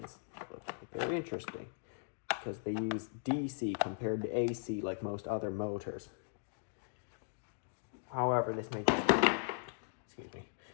look like. They're interesting because they use DC compared to AC like most other motors. However, this may just be, excuse me,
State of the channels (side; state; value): right; silent; digital silence